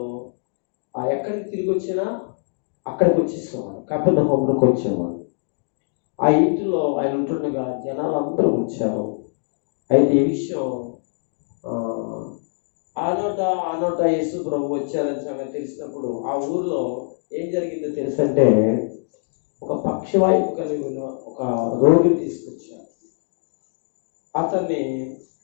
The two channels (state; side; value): silent; right; digital silence